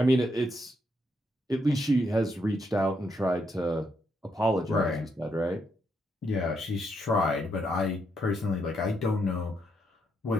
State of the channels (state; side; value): normal; both; correlation 0.77